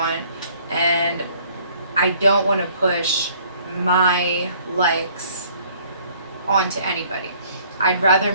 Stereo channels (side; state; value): both; inverted; correlation -0.58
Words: and I don't want to push my likes onto anybody. I'd rather